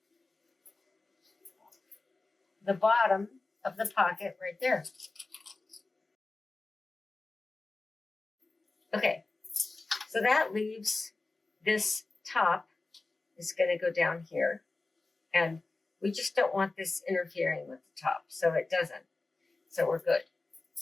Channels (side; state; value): right; quieter; 3.4 dB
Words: the bottom of the pocket right there. Okay, so that leaves this top is going to go down here, and we just don't want this interfering with the top, so it doesn't. So we're good.